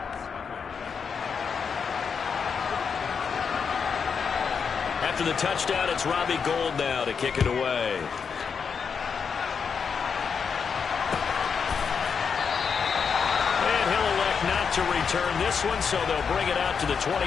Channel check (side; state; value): right; quieter; 6.2 dB